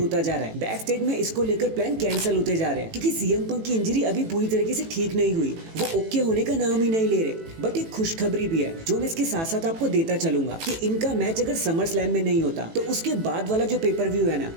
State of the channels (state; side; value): late; left; 18 ms